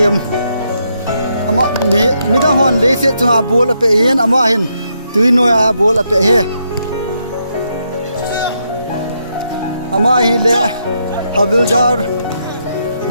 ama me da hon le se chunga bol ape hian ama hin tui noya bol ape he ama hi le havildar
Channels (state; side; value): inverted; both; correlation -0.79